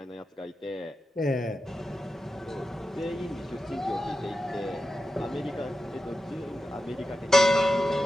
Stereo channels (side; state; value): both; normal; correlation 0.92